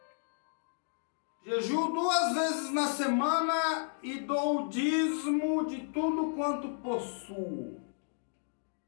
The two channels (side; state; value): right; silent; digital silence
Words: jejuo 2 vezes na semana e dou o dízimo de tudo quanto possuo.